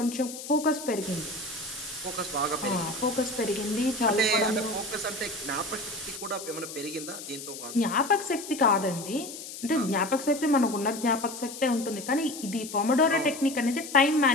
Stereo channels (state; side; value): noise; left; hiss, 11 dB below the sound